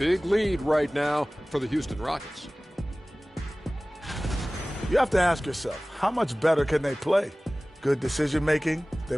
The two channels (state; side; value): normal; both; correlation 0.98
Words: lead right now for the Houston Rockets. You have to ask yourself, how much better can they play? Good decision making,